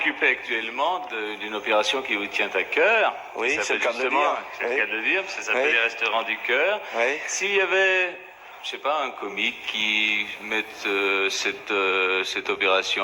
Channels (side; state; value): both; identical; correlation 1.00